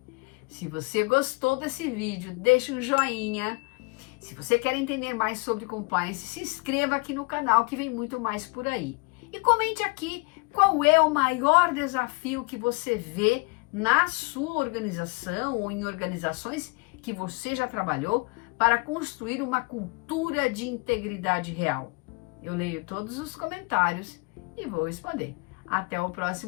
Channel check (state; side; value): quieter; right; 30.7 dB